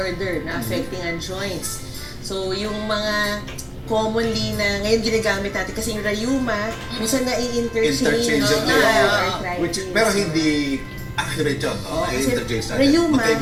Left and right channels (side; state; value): both; identical; correlation 1.00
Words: na affecting ang joints. So yung mga commonly na ngayon ginagamit natin kasi yung rayuma, minsan na-i-interchange Interchangeable. arthritis. Which, pero hindi accurate yun. No? Oo, kasi I-interchange natin. rayuma,